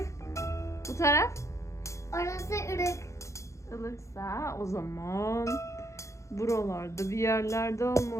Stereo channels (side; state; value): right; late; 0.14 ms